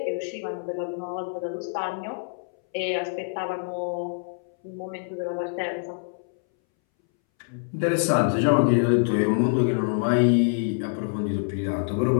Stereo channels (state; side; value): silent; right; 61 dB below the other